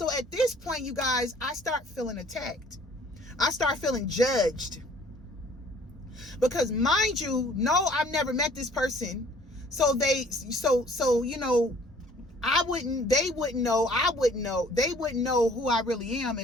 at this point, you guys, I start feeling attacked. I start feeling judged. Because mind you, no, I've never met this person. So they wouldn't know who I really am,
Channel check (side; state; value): both; normal; correlation 0.55